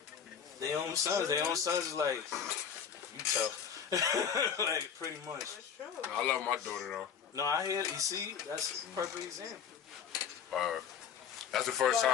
their own sons. Their own sons is like, you tough. Like, pretty much. That's true. I love my daughter though. No, I hear, you see, that's a perfect example. That's the first But,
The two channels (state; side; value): quieter; right; 7.5 dB